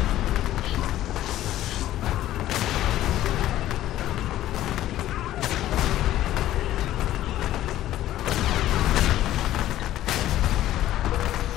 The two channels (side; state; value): right; quieter; 13.7 dB